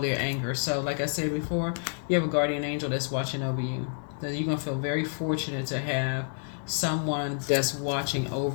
anger. So, like I said before, you have a guardian angel that's watching over you. So you're going to feel very fortunate to have someone that's watching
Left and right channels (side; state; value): right; silent; digital silence